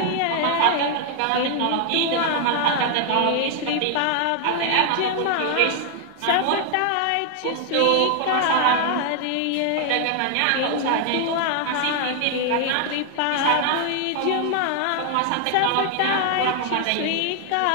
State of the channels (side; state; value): both; different; correlation 0.00